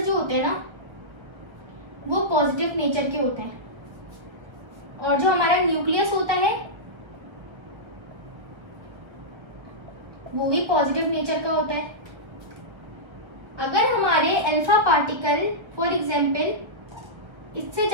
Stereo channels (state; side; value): late; left; 1.3 ms